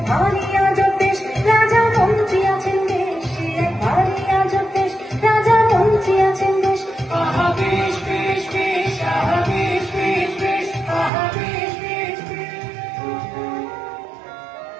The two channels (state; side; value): drops out; left; at 11.1 s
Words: ভারী আজব দেশ, রাজা মন্ত্রী আছেন বেশ। সে এক ভারী আজব দেশ, রাজা মন্ত্রী আছেন বেশ। আহা বেশ বেশ বেশ, আহা বেশ বেশ বেশ, আহা বেশ বেশ বেশ।